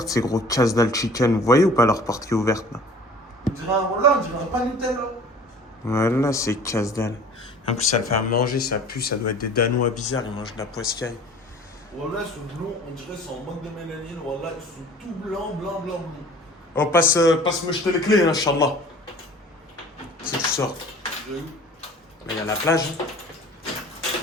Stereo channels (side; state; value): both; normal; correlation 0.46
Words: ces gros casse-dalle chicken. Vous voyez ou pas leur porte qui est ouverte là? On dirait un pas Nutella. Voilà, c'est casse-dalle. En plus, ça le fait à manger, ça pue, ça doit être des Danois bizarres, ils mangent de la poiscaille. Voilà, ils sont blonds, on dirait qu'ils sont en manque de mélanine. Voilà, ils sont tout blancs. Oh, passe-moi jeter les clés, hein, Inch'Allah. Si tu sors. Mais il y a la plage.